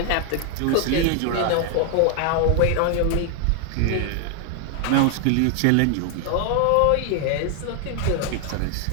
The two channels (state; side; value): different; both; correlation 0.00